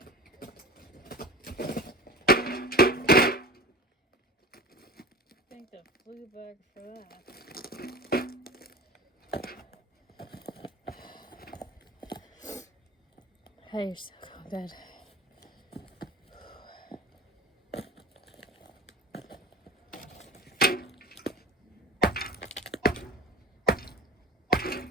Thank the flu bug for that. Hey, you're so cold, Dad.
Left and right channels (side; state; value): both; normal; correlation 0.34